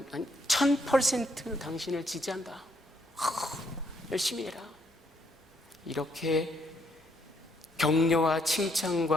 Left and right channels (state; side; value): normal; both; correlation 0.72